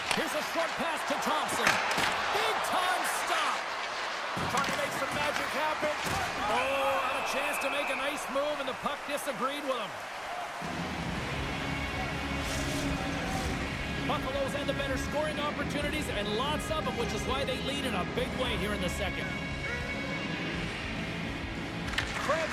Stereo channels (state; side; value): identical; both; correlation 1.00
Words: Here's a short pass to Thompson. Big time stop. Trying to make some magic happen. Oh, had a chance to make a nice move, and the puck disagreed with him. Buffalo's had the better scoring opportunities, and lots of them, which is why they lead in a big way here in the second. Krebs